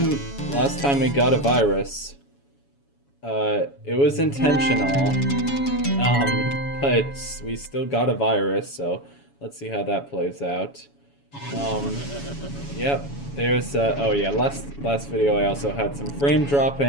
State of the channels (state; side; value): late; right; 7.1 ms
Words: we got a virus. It was intentional. But we still got a virus, so let's see how that plays out. Yep. There's oh yeah, last video I also had some frame